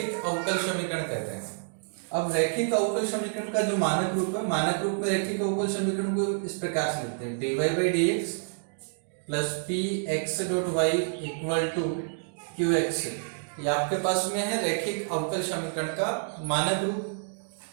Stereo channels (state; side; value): silent; left; digital silence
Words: अवकल समीकरण कहते हैं। अब रैखिक अवकल समीकरण का जो मानक रूप है, मानक रूप में रैखिक अवकल समीकरण को इस प्रकार से लिखते हैं: dy by D X plus P X dot Y equal to Q X. ये आपके पास में है रैखिक अवकल समीकरण का मानक